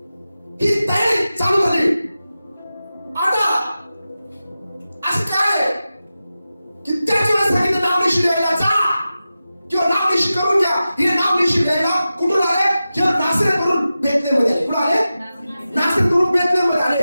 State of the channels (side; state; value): both; inverted; correlation -0.93